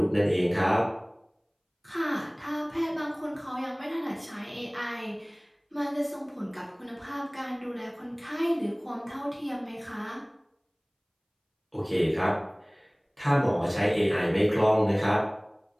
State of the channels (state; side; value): identical; both; correlation 1.00